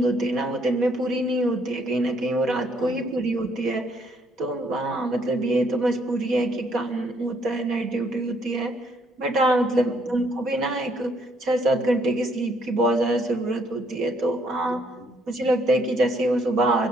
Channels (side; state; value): both; normal; correlation 0.69